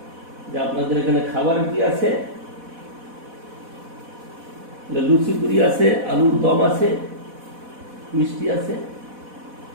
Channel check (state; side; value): late; left; 4.1 ms